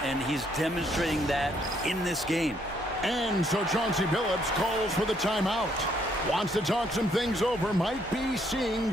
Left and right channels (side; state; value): both; normal; correlation 0.70